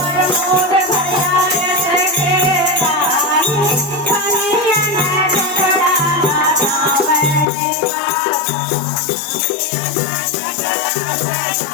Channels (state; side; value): drops out; right; at 7.5 s